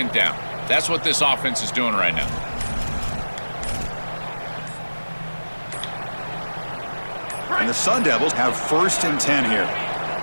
down. That's what this offense is doing right now. And the Sun Devils have 1st and 10 here.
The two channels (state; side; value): inverted; both; correlation -1.00